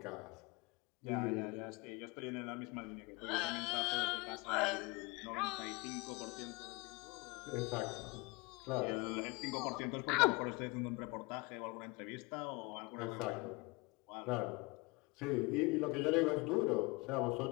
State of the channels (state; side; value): quieter; right; 26.3 dB